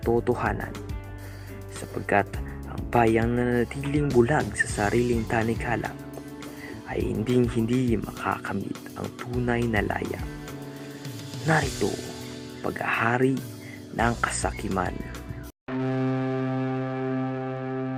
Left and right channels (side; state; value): both; identical; correlation 1.00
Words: sapagkat ang bayang nanatiling bulag sa sariling tanikala ay hindi makakamit ang tunay na laya. Narito, paghahari ng kasakiman.